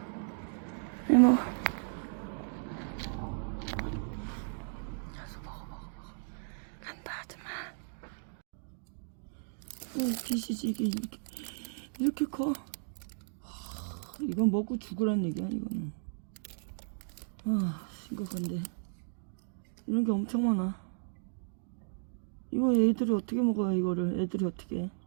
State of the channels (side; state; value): left; silent; digital silence